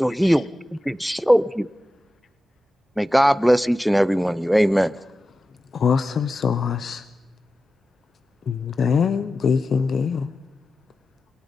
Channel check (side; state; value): both; normal; correlation 0.93